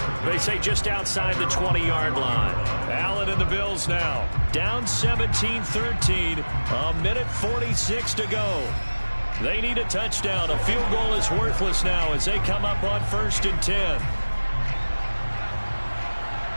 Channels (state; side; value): inverted; both; correlation -1.00